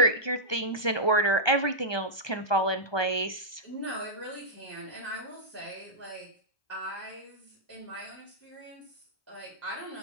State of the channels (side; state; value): right; late; 1.2 ms